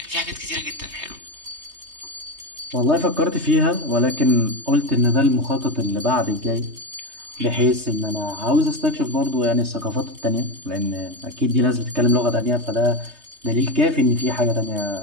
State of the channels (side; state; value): left; late; 3.2 ms